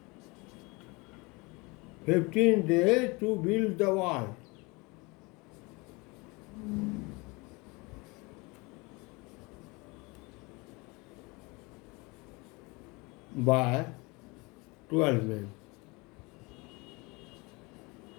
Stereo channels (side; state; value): right; quieter; 26.3 dB